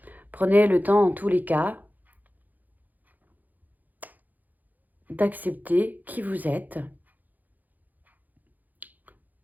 prenez le temps en tous les cas d'accepter qui vous êtes.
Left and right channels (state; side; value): late; left; 0.083 ms